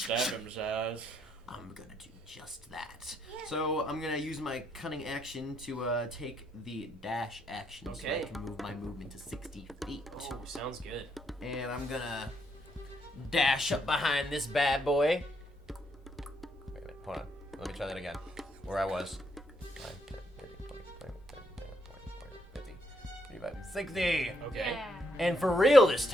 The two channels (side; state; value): both; normal; correlation 0.75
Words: him, Zaz. I'm gonna do just that. So I'm gonna use my cunning action to take the dash action, so I Okay. can move my movement to 60 feet. Oh, sounds good. And I'm gonna dash up behind this bad boy. Wait a minute, hold on. Let me try that again. Where I was. 5, 10, 30, 20, 25, 40, 50, 55, 60. Okay. Yeah. And for real this